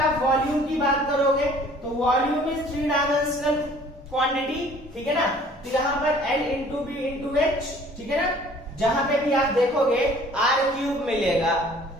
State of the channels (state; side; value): normal; both; correlation 0.53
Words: वॉल्यूम की बात करोगे तो वॉल्यूम इज 3 डायमेंशनल क्वांटिटी। ठीक है ना, तो यहाँ पर L into B into H. ठीक है ना, जहां पे भी आप देखोगे आर क्यूब मिलेगा,